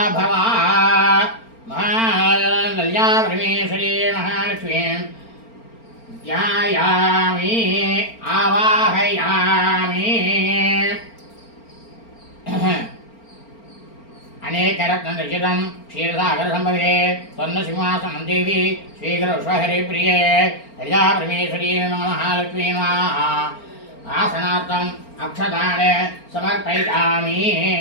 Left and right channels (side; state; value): right; late; 4.4 ms